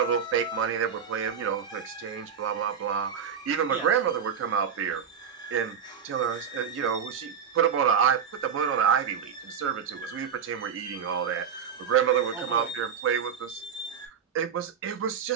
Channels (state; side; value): quieter; left; 7.3 dB